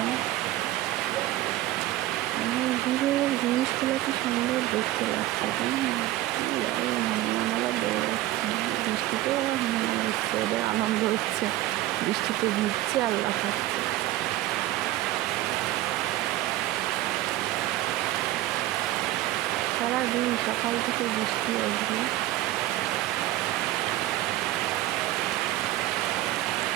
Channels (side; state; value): left; quieter; 15.5 dB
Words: দূরের জিনিসগুলো কি সুন্দর দেখতে লাগছে, তাই না? হনুমানেরা দৌড়াচ্ছে, বৃষ্টিতে ওরা হনুমান হচ্ছে, ওদের আনন্দ হচ্ছে, বৃষ্টিতে ভিজছে আর লাফাচ্ছে। সারাদিন সকাল থেকে বৃষ্টি আসবে।